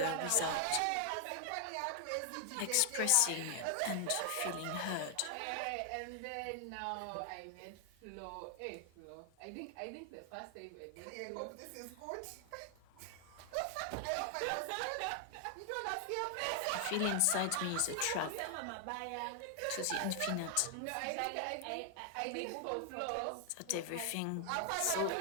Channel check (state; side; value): different; both; correlation 0.00